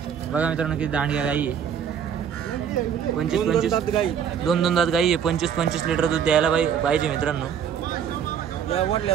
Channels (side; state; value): left; quieter; 8.0 dB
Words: बघा मित्रांनो, किती दांडग्या गाई आहे. 25 गाई दोन दात गाई आहे. 25 लिटर दूध द्यायला पाहिजे मित्रांनो. या